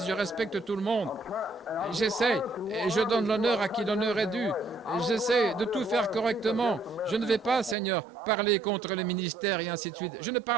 Je respecte tout le monde. J'essaie et je donne l'honneur à qui l'honneur est dû. J'essaie de tout faire correctement. Je ne vais pas, Seigneur, parler contre les ministères et ainsi de suite. Je ne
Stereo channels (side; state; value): left; drops out; at 7.8 s